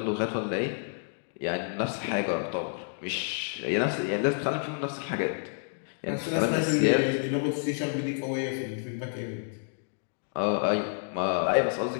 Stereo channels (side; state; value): right; silent; digital silence